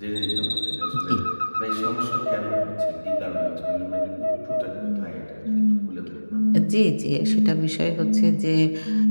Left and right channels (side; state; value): both; inverted; correlation -1.00